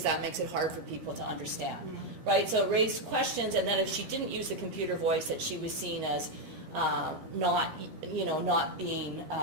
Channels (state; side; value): late; left; 13 ms